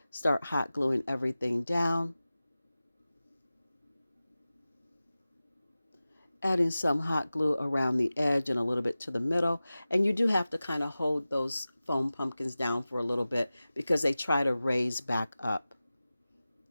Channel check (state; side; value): inverted; both; correlation -0.96